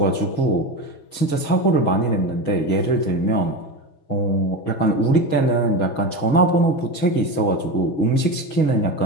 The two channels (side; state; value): right; late; 6.3 ms